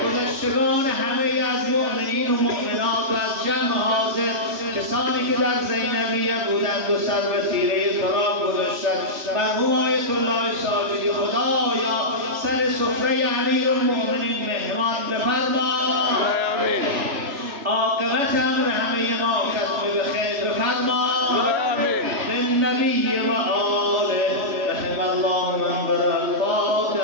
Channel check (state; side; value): late; left; 3.1 ms